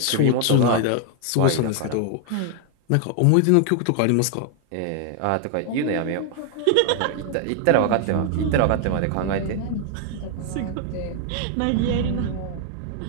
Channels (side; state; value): both; different; correlation 0.00